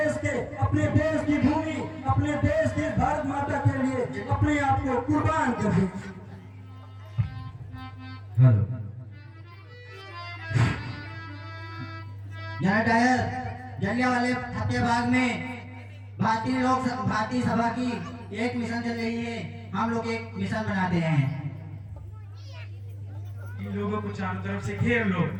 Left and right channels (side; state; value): both; identical; correlation 1.00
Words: की भूमि, अपने देश की भारत माता के लिए अपने आप को कुर्बान कर दें। हेलो जलियांवाले हत्याबाग में भारतीय सभा की एक मिशन चल रही है। हम लोग एक मिशन बनाते हैं। इन लोगों को चारों तरफ से घेर लो।